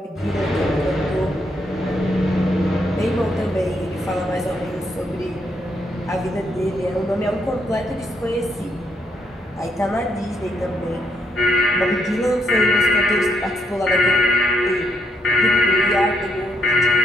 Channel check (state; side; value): normal; both; correlation 0.76